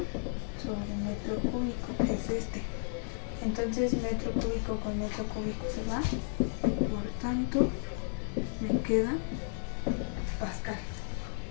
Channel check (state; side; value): silent; right; 56 dB below the other